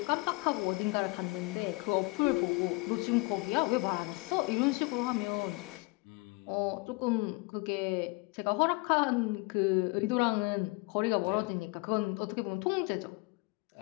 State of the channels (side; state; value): right; quieter; 27.0 dB